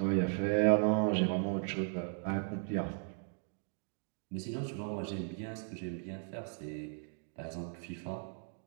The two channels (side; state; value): left; silent; 53 dB below the other